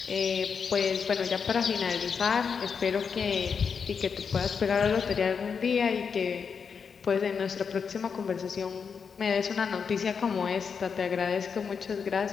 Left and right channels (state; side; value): quieter; right; 6.2 dB